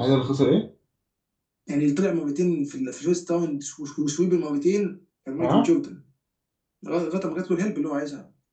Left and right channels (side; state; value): both; identical; correlation 1.00